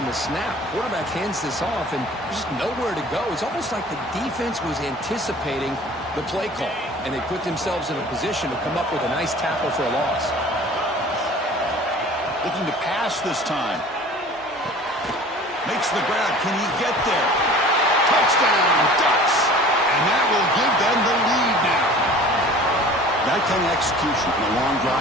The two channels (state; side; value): normal; both; correlation 0.45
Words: the snap. Quarterback hands this off, and there's just nowhere to go. It's almost like the defense was anticipating the play call, and they put themselves in a position to come up with a nice tackle for a loss. Looking to pass this time. Makes the grab. Can he get there? Touchdown, Ducks! And that will give them the lead now. That kind of execution in a long